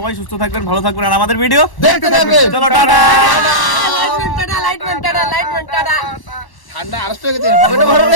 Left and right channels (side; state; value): right; late; 1.1 ms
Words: সুস্থ থাকবেন, ভালো থাকবেন, আর আমাদের ভিডিও দেখতে থাকবেন। চলো টাটা। ঠান্ডা আরো হয়ে গেছে, পকেটে ভরো